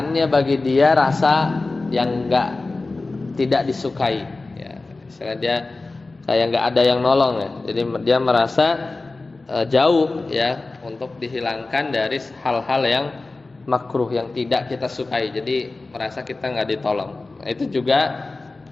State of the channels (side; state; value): right; quieter; 3.4 dB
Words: bagi dia rasa yang tidak disukai ya. Misalnya dia kayak nggak ada yang nolong ya. Jadi dia merasa jauh ya untuk dihilangkan dari hal-hal yang makruh, yang tidak kita sukai. Jadi merasa kita nggak ditolong. Nah, itu juga